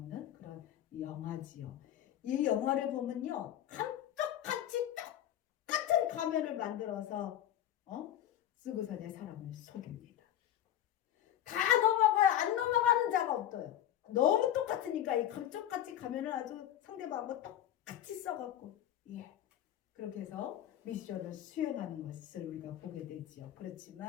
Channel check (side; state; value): right; quieter; 11.7 dB